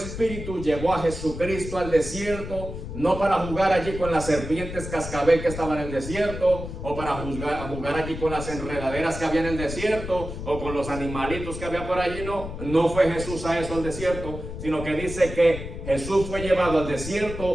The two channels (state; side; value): noise; left; rumble, 8 dB below the sound